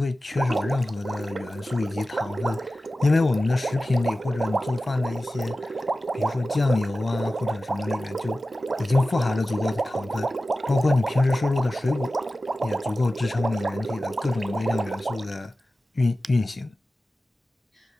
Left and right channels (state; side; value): normal; both; correlation 0.95